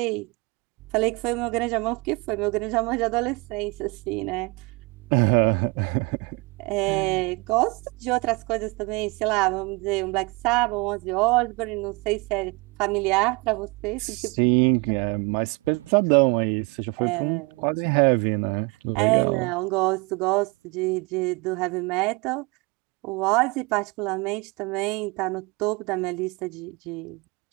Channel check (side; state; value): left; quieter; 27.4 dB